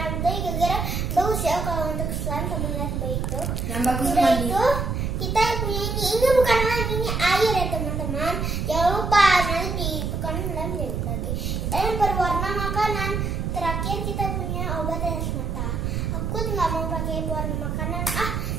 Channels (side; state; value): right; noise; rumble, 1 dB below the sound